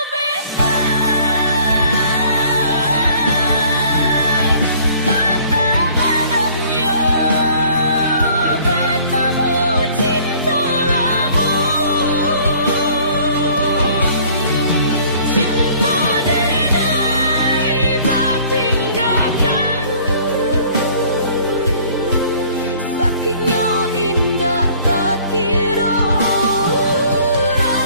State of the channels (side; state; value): both; inverted; correlation -0.54